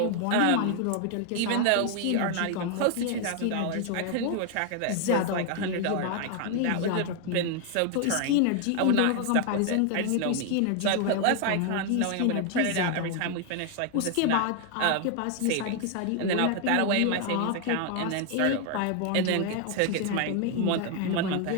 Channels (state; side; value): different; both; correlation 0.00